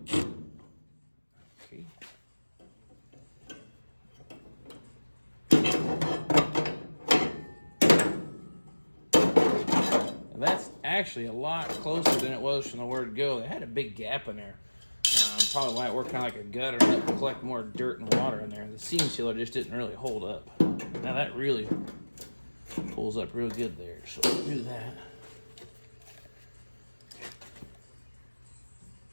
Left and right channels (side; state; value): both; inverted; correlation -1.00